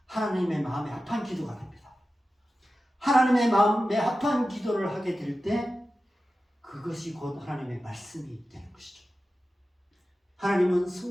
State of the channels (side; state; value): both; normal; correlation 0.93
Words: 하나님의 마음에 합한 기도가 됩니다. 하나님의 마음에 합한 기도를 하게 될 때 그것이 곧 하나님의 말씀이 되는 것이죠. 하나님은